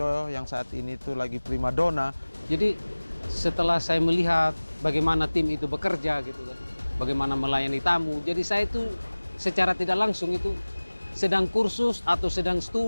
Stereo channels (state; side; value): inverted; both; correlation -1.00